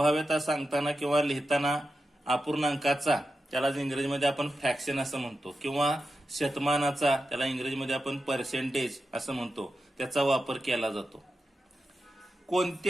सांगताना किंवा लिहिताना अपूर्णांकाचा, त्याला इंग्रजीमध्ये आपण फ्रॅक्शन असं म्हणतो, किंवा शतमानाचा, त्याला इंग्रजीमध्ये आपण पर्सेंटेज असं म्हणतो, त्याचा वापर केला जातो.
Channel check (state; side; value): normal; both; correlation 0.90